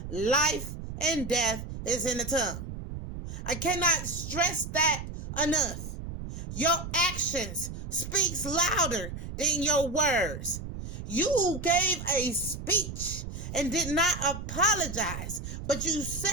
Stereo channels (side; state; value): right; noise; rumble, 8 dB below the sound